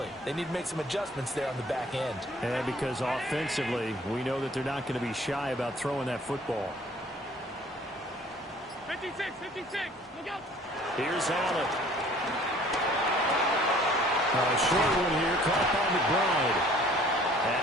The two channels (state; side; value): normal; both; correlation 0.54